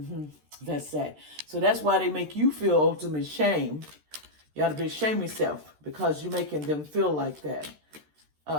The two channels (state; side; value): late; left; 13 ms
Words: That's sad. So that's why they make you feel ultimate shame. You ought to be ashamed of yourself because you're making them feel like that.